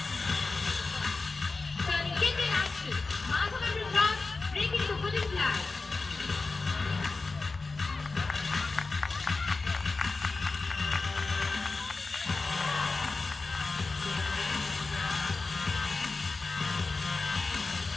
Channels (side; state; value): right; quieter; 3.8 dB